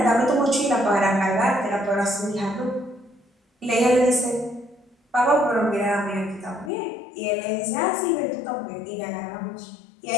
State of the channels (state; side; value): drops out; right; at 6.7 s